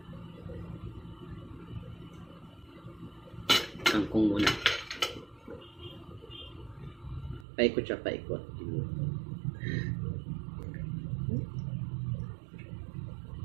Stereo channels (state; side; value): drops out; left; at 7.5 s